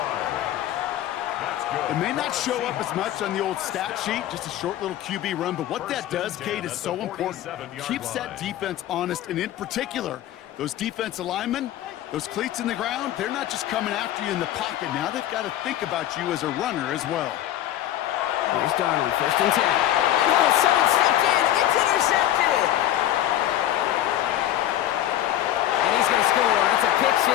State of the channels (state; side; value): quieter; right; 12.7 dB